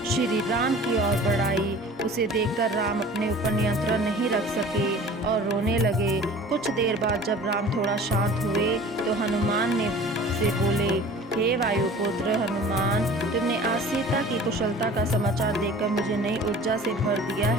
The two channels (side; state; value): both; normal; correlation 0.44